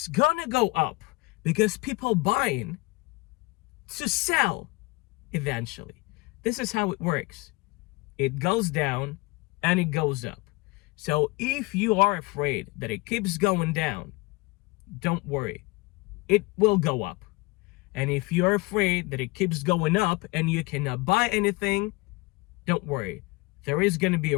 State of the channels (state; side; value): quieter; right; 24.0 dB